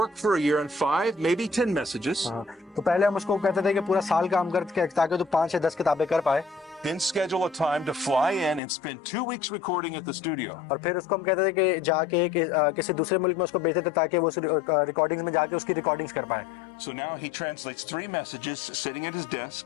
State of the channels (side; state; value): right; drops out; at 8.6 s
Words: for a year on 5, maybe 10 messages, हाँ, तो पहले हम उसको कहते थे कि पूरा साल काम करके ताकि तो 5 से 10 किताबें कर पाए, then schedule a time to fly in and spend 2 weeks recording at the studio. और फिर उसको हम कहते थे कि जाके किसी दूसरे मुल्क में उसको भेजते थे ताकि वो रिकॉर्डिंग्स में जाके उसकी रिकॉर्डिंग्स कर पाए। So now he translates 3 messages sitting at his